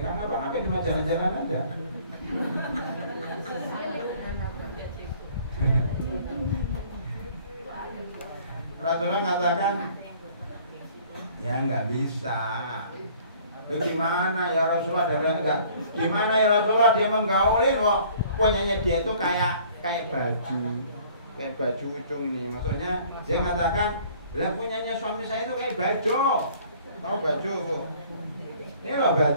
ngapa-ngapain, cuma jalan-jalan aja. Rasulullah katakan, ya nggak bisa. Gimana ya Rasulullah? Gimana ya Rasulullah? Dia menggaulin kok. Punyanya dia itu kayak baju ucung ini. Maksudnya dia katakan, lah punyanya suami saya itu kayak baju. Tahu baju Bu? Ini loh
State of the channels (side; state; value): both; inverted; correlation -0.55